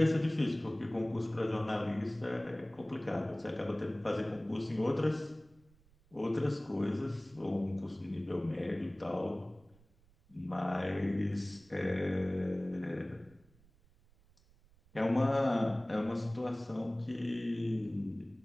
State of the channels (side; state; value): right; noise; rumble, 29 dB below the sound